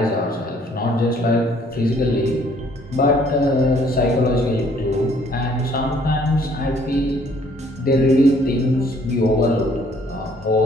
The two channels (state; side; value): normal; both; correlation 0.61